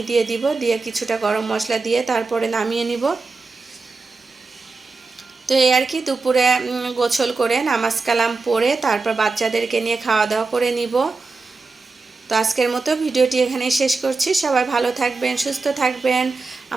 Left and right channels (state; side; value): quieter; left; 4.0 dB